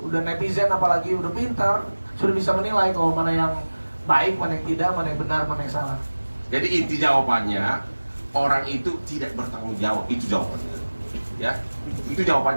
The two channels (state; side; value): inverted; both; correlation -1.00